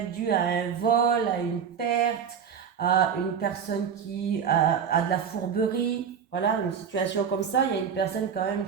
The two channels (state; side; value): quieter; left; 7.3 dB